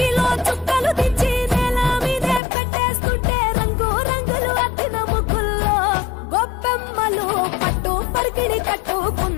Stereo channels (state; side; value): drops out; right; at 2.4 s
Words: చుక్కలు దించి నేల మీదే పెట్టేస్తుంటే రంగు రంగులు అద్దిన ముగ్గుల్లో గొప్పెమ్మలు పట్టు పరికిణి